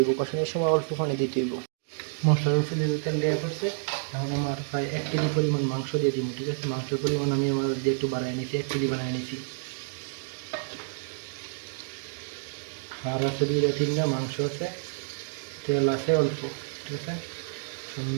কষানোর সময় অল্প পানি দিতে হইব। মশলার উপরে তেল দেওয়া করছে, এখন আমার প্রায় 1 কেজি পরিমাণ মাংস দিয়ে দিব, ঠিক আছে। মাংসের পরিমাণ আমি আমার দিয়ে একটু বাড়াই নিয়েছি, 1 কেজি বানিয়ে নিয়েছি। আর আছে 2-3টা মাংস আছে, তেল আছে অল্প, ঠিক আছে।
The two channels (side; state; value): left; silent; digital silence